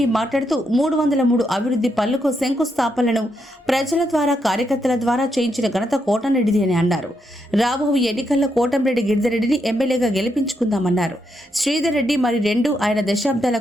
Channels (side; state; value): both; normal; correlation 0.80